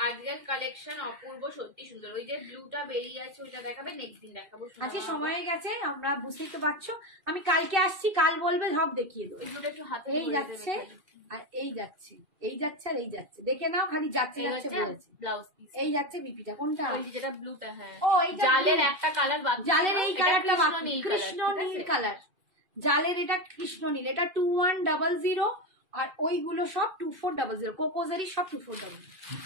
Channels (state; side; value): late; left; 2.4 ms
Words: আজকের কালেকশন অপূর্ব, সত্যি সুন্দর। ওই যে ব্লুটা বেরিয়ে আছে ওইটা দেখাবে, নেক্সট দিন দেখাবো। আজকে সময় হয়ে গেছে, আমরা বুঝতেই তো পারছো, আমি কালকে আসছি, কাল বলবে সব দেখিয়ে দেবো। এগুলো একটু হাতে এই যাচ্ছে আর এই যাচ্ছে, এই যাচ্ছে আর এই যাচ্ছে, দেখে নাও, খালি যাচ্ছে যাচ্ছে বলেছে। ব্লাউজ পিস, এই যাচ্ছে বিপিটা কোনটা? ওই যে যেটা ব্লুটা, হ্যাঁ। ও এইটা জালের blue। একটা কালার বাকি, জালের এই এটা কালারটা কৃষ্ণ বাকি, নীল কৃষ্ণ কালার, ঠিক নীল আছে? কালার। জালের এটা কৃষ্ণ নীল, এটা 2100, আর ওইগুলো সব 2400, কোকোজারি সব 2400।